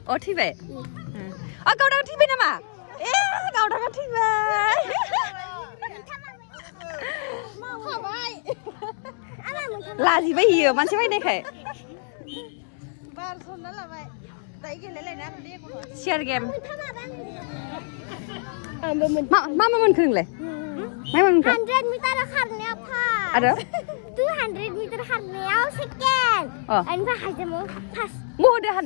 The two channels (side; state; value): right; silent; 62 dB below the other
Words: अ थैबाय गावदागा थैबाय नामा गावदागा थैबाय लाजिबाय हियो मानसि बायनायखाय शेयार गेम मा मोनखो नोंलाय 100 मिटार खारनायाव आरो 200 मिटार खारनायाव सेकेन्ड ओमफ्राय हाइजामाव फार्स्ट महदो